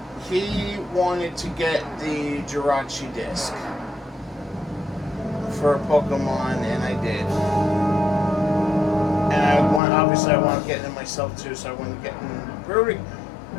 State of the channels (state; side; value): drops out; right; at 9.8 s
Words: he wanted to get the Jirachi disc for Pokemon, and I did. And obviously I wanted to get it myself too, so I wanted to get in pre-ordering.